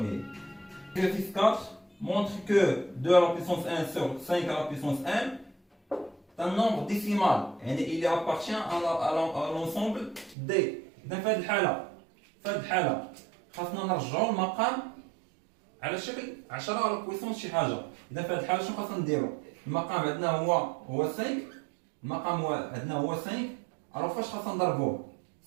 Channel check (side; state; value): left; drops out; at 10.4 s